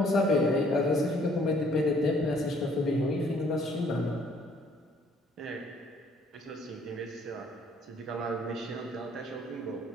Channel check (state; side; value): normal; both; correlation 0.61